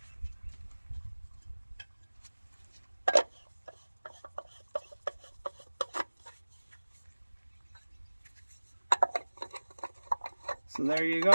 So there you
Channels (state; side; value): inverted; both; correlation -1.00